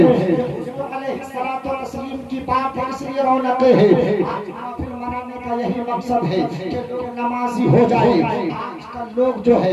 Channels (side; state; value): both; identical; correlation 1.00